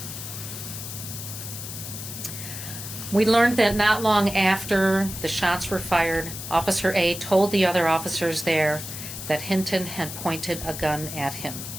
We learned that not long after the shots were fired, Officer A told the other officers there that Hinton had pointed a gun at him.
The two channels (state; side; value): noise; left; hiss, 9 dB below the sound